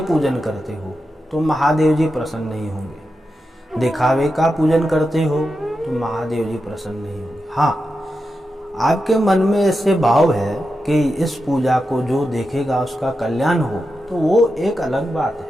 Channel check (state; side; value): normal; both; correlation 0.89